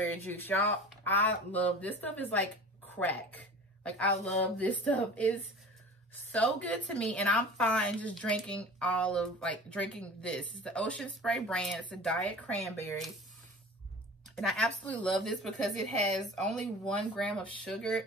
juice. Y'all, I love this stuff. Is like crack. Like, I love this stuff. It's so good to me. And I'm fine just drinking drinking this. It's the Ocean Spray brand. It's a diet cranberry. And I absolutely love this because it has only 1 gram of sugar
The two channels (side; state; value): both; normal; correlation 0.39